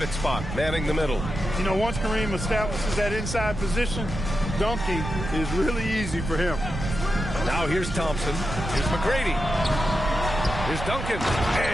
spot, manning the middle. You know, once Kareem establishes that inside position, dunking is really easy for him. Now here's Thompson. Here's McGrady. Here's Duncan.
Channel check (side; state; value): right; noise; rumble, 5 dB below the sound